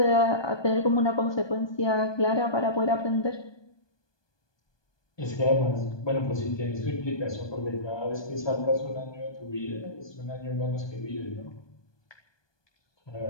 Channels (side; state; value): right; late; 1.2 ms